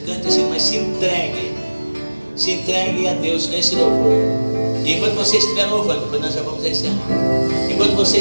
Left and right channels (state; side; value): inverted; both; correlation -1.00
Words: cante esse hino, mas se entregue a Deus nesse louvor. E enquanto você estiver louvando, depois nós já vamos encerrar. Enquanto você